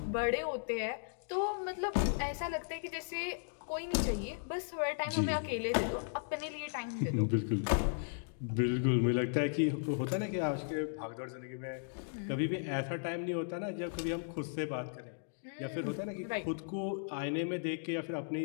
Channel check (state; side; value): silent; right; digital silence